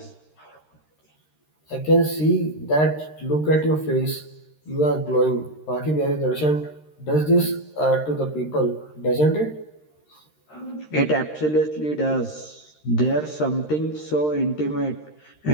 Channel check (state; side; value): late; right; 13 ms